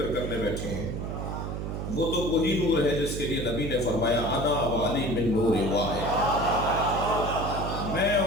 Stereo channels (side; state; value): right; noise; hum, 4 dB below the sound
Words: کرنے بیٹھے ہیں وہ تو وہی نور ہے جس کے لیے نبی نے فرمایا انا و علی من نور واحد. میں